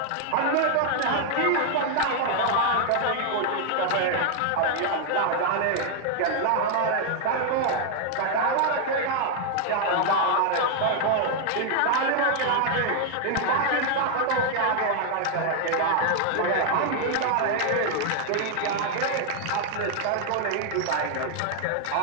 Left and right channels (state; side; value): different; both; correlation 0.00